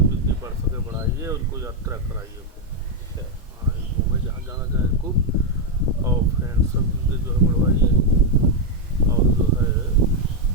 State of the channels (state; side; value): normal; both; correlation 0.02